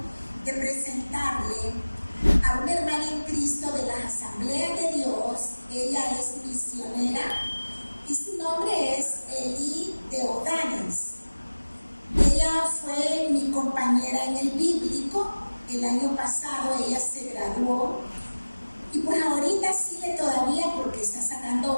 de presentarle a una hermana en Cristo de las Asambleas de Dios. Ella es misionera y su nombre es Eli de Odanes. Ella fue mi compañera en el bíblico. El año pasado ella se graduó y pues ahorita sigue todavía porque está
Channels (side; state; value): both; inverted; correlation -1.00